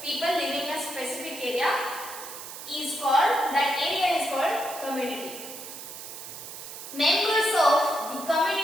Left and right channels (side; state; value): right; noise; hiss, 11 dB below the sound